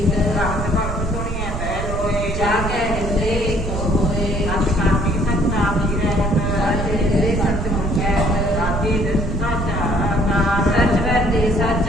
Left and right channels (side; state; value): right; noise; rumble, 4 dB below the sound